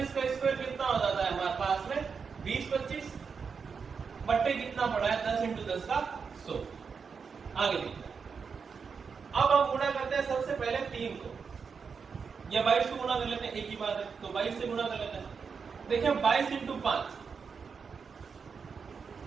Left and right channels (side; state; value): left; quieter; 5.7 dB